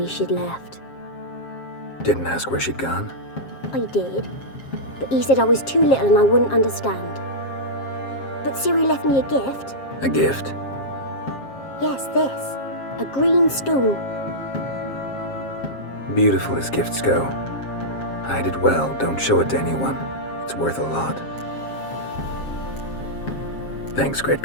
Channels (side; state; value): right; late; 7.5 ms